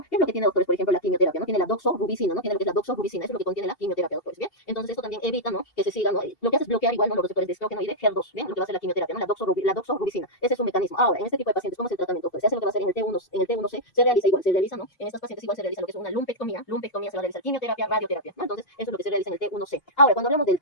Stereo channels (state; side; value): late; right; 2.8 ms